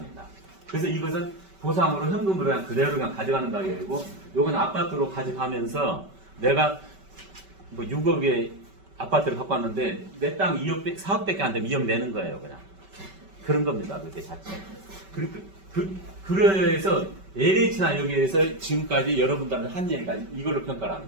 그래서 이것은 보상으로 현금으로 그냥 그대로 그냥 가져가는 가격이고, 요건 아파트로 가져가면서 내가 뭐 6억의 아파트를 갖고 왔는데 내 땅 2억, 4억밖에 안 되면 2억 내는 거예요, 그냥. 그런 겁니다, 그게 자체. 그래서 LH나 여기에서 지금까지 여러분들한테 한 얘기가 이걸로 평가를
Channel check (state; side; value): late; left; 5.2 ms